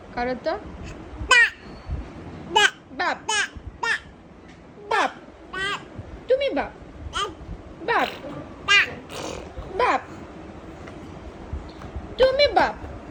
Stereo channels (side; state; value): both; identical; correlation 1.00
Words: করো তো। বাপ বাপ, তুমি বাপ বাপ বাপ, তুমি বাপ।